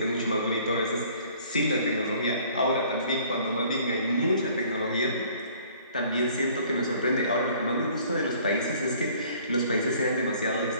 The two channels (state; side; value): inverted; both; correlation -0.56